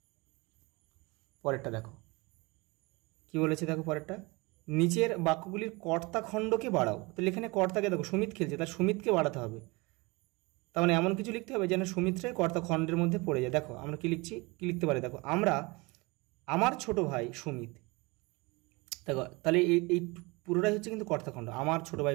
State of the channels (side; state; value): left; quieter; 25.5 dB